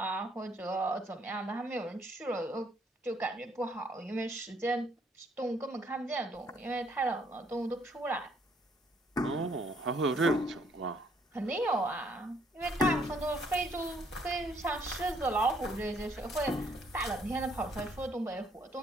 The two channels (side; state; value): both; normal; correlation 0.67